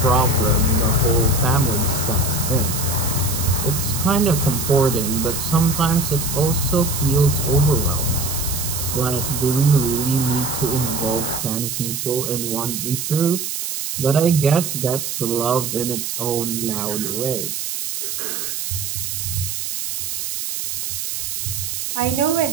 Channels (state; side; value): noise; right; hiss, 4 dB below the sound